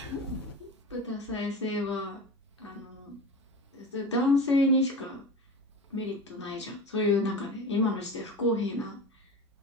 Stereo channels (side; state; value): both; normal; correlation 0.30